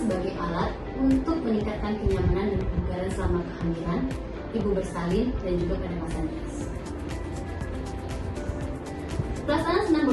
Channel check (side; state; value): both; identical; correlation 1.00